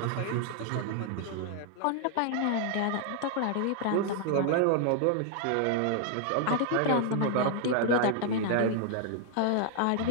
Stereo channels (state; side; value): different; both; correlation 0.00